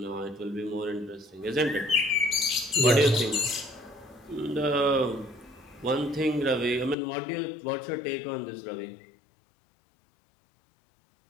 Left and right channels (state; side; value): drops out; right; at 7.0 s